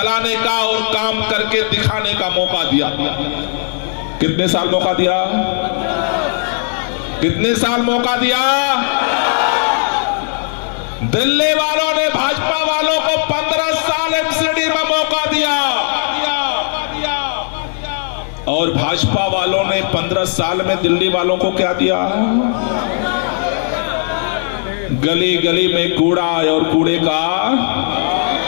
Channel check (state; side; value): silent; right; digital silence